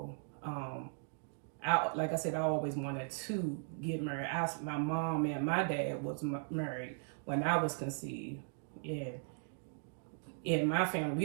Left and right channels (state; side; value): silent; left; digital silence